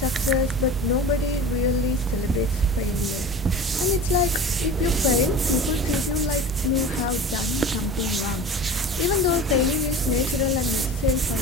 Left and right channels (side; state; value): both; normal; correlation 0.35